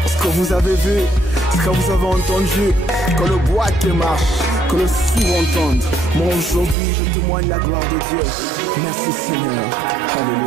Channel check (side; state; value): left; drops out; at 6.8 s